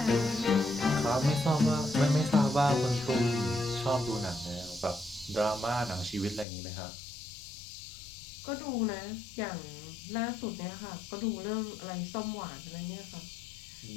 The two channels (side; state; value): right; drops out; at 6.5 s